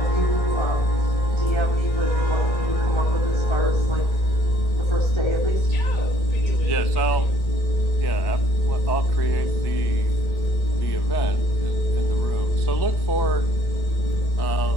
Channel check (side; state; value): right; late; 1.8 ms